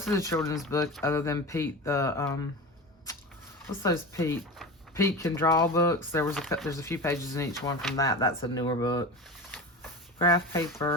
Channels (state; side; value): normal; both; correlation 0.28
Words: of the children's book, other than Pete, what's those Pete Can Draw books. There's a few pages in each one from that. That's a newer book. Graph